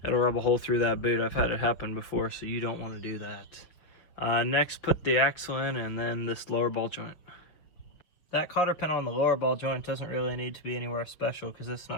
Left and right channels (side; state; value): right; late; 6.3 ms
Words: it'll rub a hole through that boot. I've had it happen before, so you don't want to do that. Next, put the axle in, and then this lower ball joint. That cotter pin on the lower ball joint doesn't really need to be anywhere special because it's